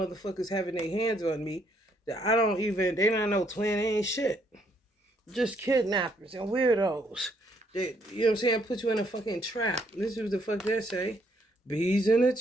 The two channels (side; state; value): both; normal; correlation 0.70